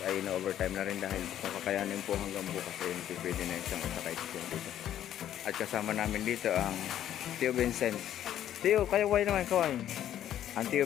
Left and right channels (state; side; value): quieter; right; 11.2 dB